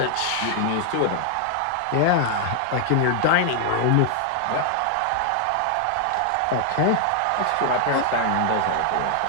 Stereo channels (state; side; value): different; both; correlation 0.00